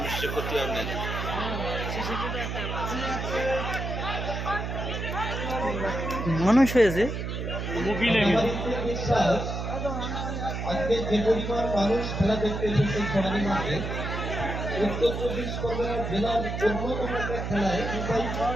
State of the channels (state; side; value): noise; right; hum, 4 dB below the sound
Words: করতে হবে না মানুষ হয়েছে মোবিলে আজকে যে পরিমাণ মানুষ খেলা দেখতে এসেছে সমাজের মাঠে উত্তর চব্বিশ পরগনা জেলার অন্যতম একটা খেলায়